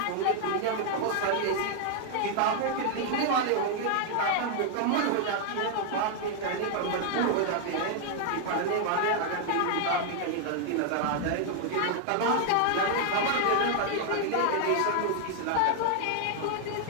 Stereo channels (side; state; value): both; different; correlation 0.00